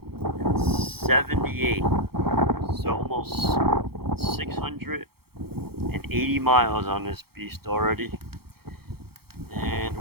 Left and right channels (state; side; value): late; left; 0.95 ms